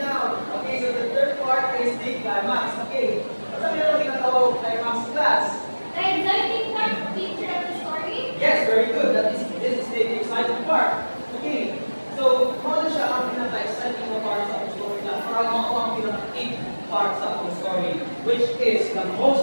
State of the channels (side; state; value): both; inverted; correlation -1.00